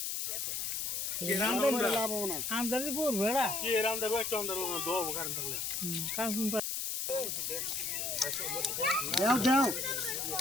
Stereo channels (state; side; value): noise; left; hiss, 2 dB below the sound